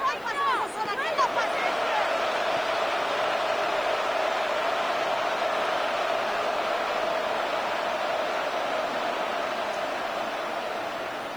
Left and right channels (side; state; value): left; noise; hiss, 26 dB below the sound